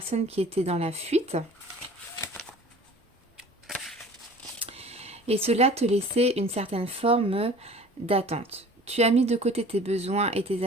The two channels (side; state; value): both; normal; correlation 0.45